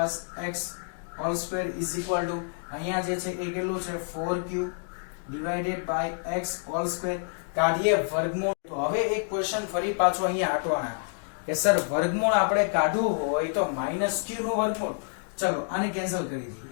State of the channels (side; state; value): right; silent; digital silence